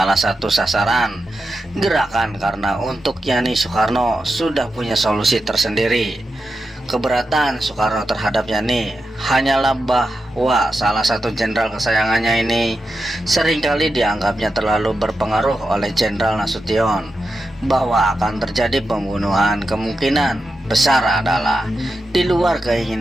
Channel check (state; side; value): normal; both; correlation 0.89